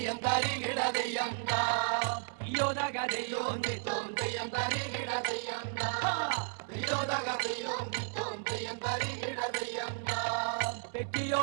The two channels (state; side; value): silent; left; 55 dB below the other